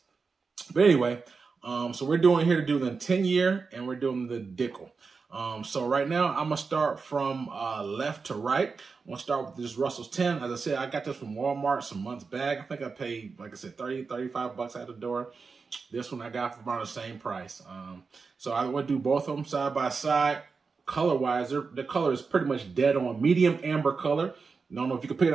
But anyway, so we're doing here to do the 10-year, and we're doing the Dickel. So right now, I'm going to start from left to right. I'm going to start with this Russell's 10. As I said, I got this from Walmart some months back. I think I paid, like I said, $35 out the door. This one I got for about the same price. So I would do both of them side by side. Color-wise, the color is pretty much dead on. Medium amber color. I don't know if you can pick it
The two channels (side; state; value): left; quieter; 4.8 dB